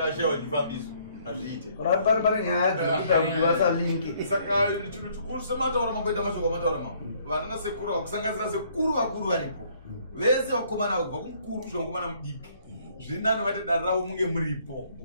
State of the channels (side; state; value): both; inverted; correlation -0.64